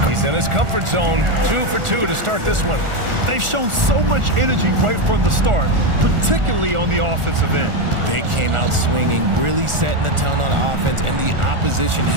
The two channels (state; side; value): late; left; 1.4 ms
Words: He's in his comfort zone. 2 for 2 to start this one. They've shown so much energy right from the start, particularly on the offensive end. They came out swinging, really setting the tone on offense, and the opposition